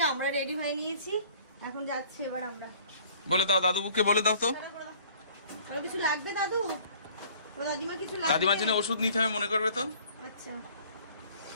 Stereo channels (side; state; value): both; inverted; correlation -0.53